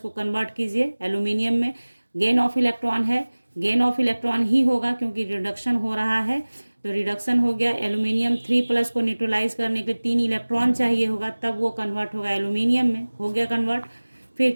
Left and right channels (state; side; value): inverted; both; correlation -1.00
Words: कन्वर्ट कीजिए एल्यूमिनियम में। गेन ऑफ इलेक्ट्रॉन है, गेन ऑफ इलेक्ट्रॉन ही होगा क्योंकि रिडक्शन हो रहा है। तो रिडक्शन हो गया, एल्यूमिनियम 3+ को न्यूट्रलाइज करने के लिए 3 इलेक्ट्रॉन चाहिए होगा, तब वो कन्वर्ट होगा एल्यूमिनियम में, हो गया कन्वर्ट। फिर